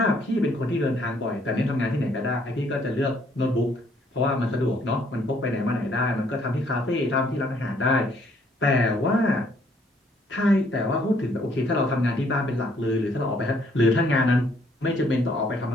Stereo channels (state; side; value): normal; both; correlation 0.65